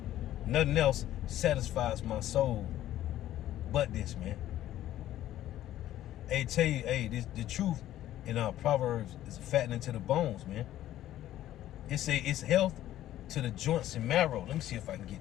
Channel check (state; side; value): quieter; right; 13.1 dB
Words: Nothing else satisfies my soul but this, man. Hey, tell you, hey, the truth in our Proverbs is fattening to the bones, man. It say it's health to the joints and marrow. Let me see if I can